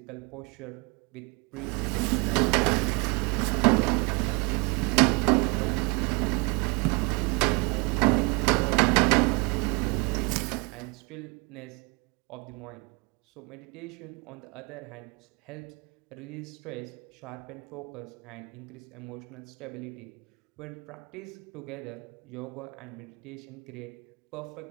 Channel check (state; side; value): quieter; left; 29.8 dB